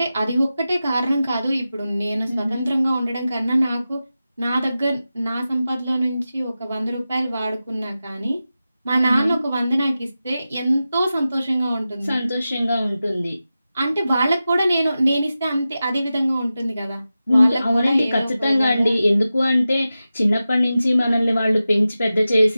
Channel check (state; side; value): inverted; both; correlation -0.93